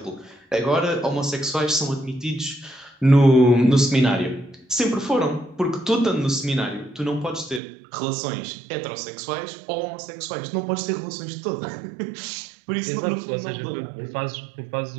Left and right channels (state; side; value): drops out; left; at 7.6 s